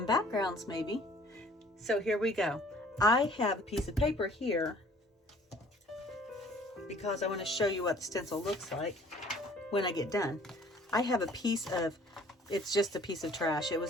backgrounds maybe. So here we go. I have a piece of paper here because I want to show you what the stencil looks like when I get done. I have a piece of, it's just a piece of trash. It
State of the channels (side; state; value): both; normal; correlation 0.54